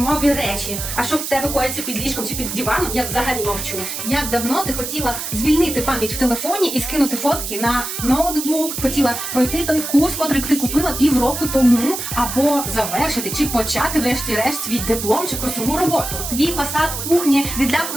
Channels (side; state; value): right; noise; hiss, 5 dB below the sound